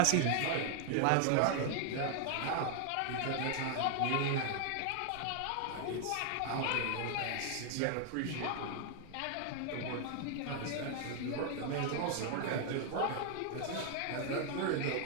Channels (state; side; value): different; both; correlation 0.00